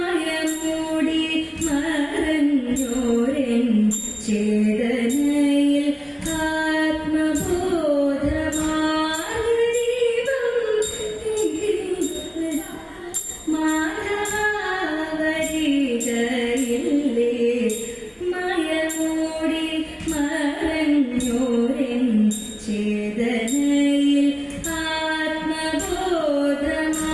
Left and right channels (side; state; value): both; identical; correlation 1.00